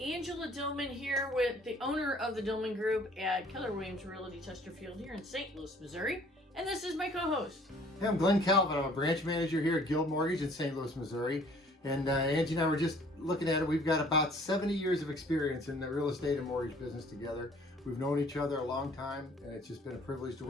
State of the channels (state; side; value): normal; both; correlation 0.55